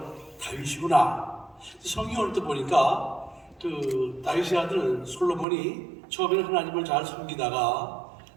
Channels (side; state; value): left; drops out; at 5.5 s